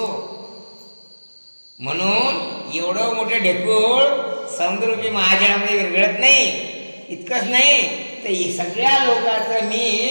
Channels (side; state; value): both; inverted; correlation -1.00